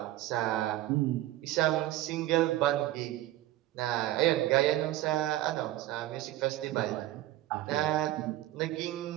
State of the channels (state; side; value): quieter; left; 15.3 dB